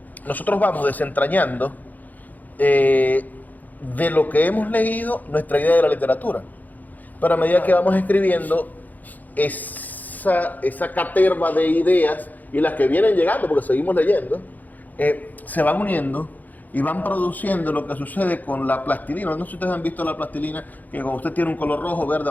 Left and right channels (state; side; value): late; right; 0.082 ms